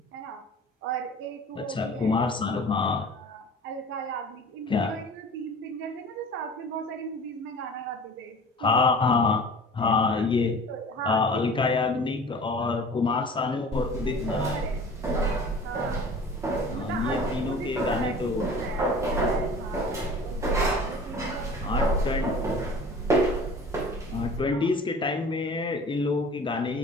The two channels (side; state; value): both; normal; correlation 0.43